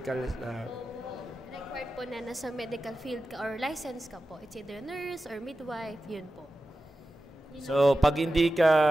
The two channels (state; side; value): normal; both; correlation 0.93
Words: Required po na nasa medical field ka or license ka po. It's either nurse or midwife, yun po. So, pag hindi